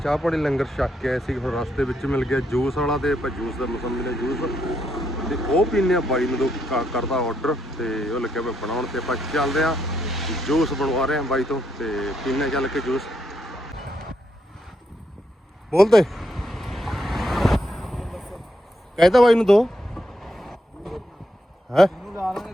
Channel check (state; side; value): normal; both; correlation 0.78